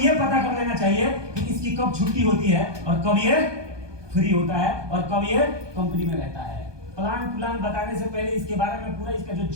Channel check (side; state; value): left; late; 1.2 ms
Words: पता कर लेना चाहिए कि इसकी कब छुट्टी होती है और कब ये फ्री होता है और कब ये कंपनी में रहता है। प्लान बताने से पहले इसके बारे में पूरा इसका जो